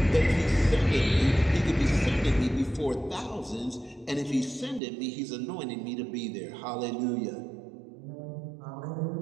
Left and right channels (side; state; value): left; drops out; at 4.8 s